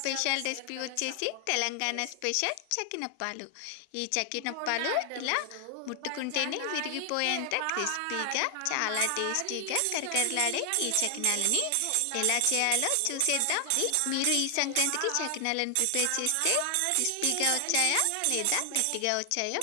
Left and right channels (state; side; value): different; both; correlation 0.00